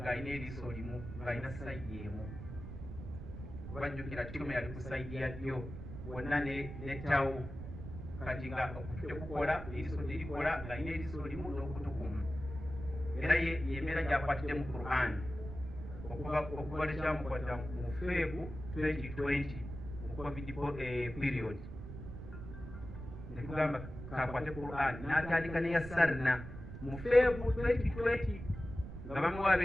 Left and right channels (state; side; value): noise; right; rumble, 10 dB below the sound